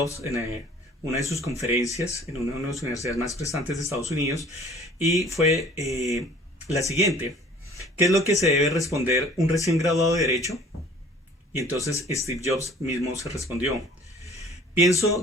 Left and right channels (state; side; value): normal; both; correlation 0.51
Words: en una de sus conferencias en una de las universidades más prestantes de Estados Unidos, y fue la siguiente: ¿qué es lo que se debe responder un recién graduado de Derecho? Y entonces Steve Jobs mismo se respondió: